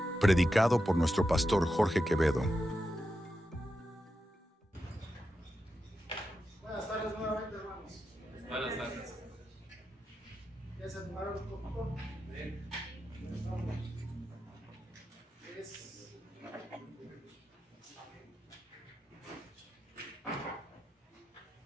predicado por nuestro pastor Jorge Quevedo. Buenas tardes nuevamente, hermanos. Buenas tardes. ¿Ya se animaron un poquito? Bien.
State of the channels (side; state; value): both; normal; correlation 0.88